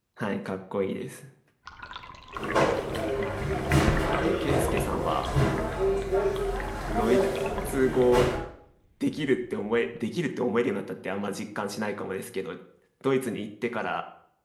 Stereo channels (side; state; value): both; identical; correlation 1.00